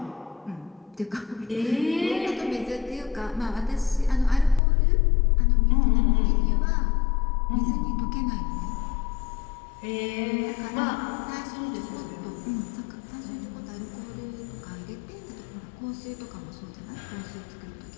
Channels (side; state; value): right; drops out; at 4.6 s